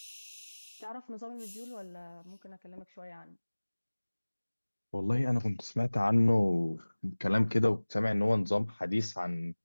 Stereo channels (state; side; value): inverted; both; correlation -1.00